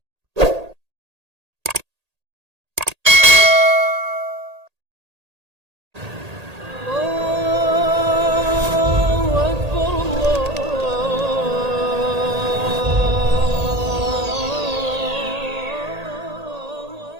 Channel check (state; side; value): late; left; 1.8 ms